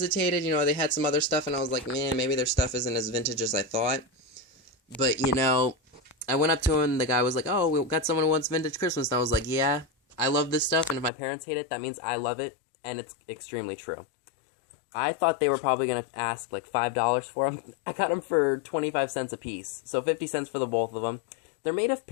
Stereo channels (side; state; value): right; drops out; at 11.1 s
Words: You know, they had some other stuff, and I was like, man, maybe their stuff isn't as vintage as I thought. But, you know, I went up to him, and the guy was like, oh, we got someone who wants vintage Christmas. And I was like, yeah, I love this stuff, and if my parents hate it, that means I love it. And it's extremely true. I thought they were probably going to ask like $5 for them. I got them for 25 cents a piece, so 50 cents for the both of them. They're made of